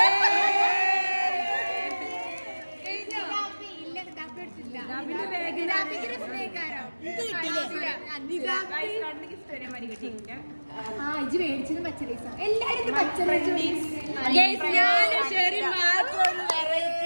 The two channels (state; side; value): inverted; both; correlation -1.00